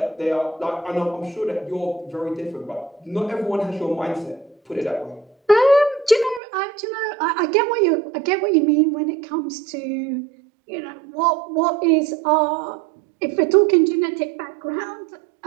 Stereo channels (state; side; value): drops out; left; at 6.4 s